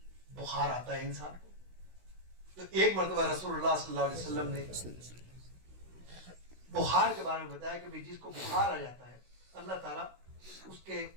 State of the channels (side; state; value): left; late; 16 ms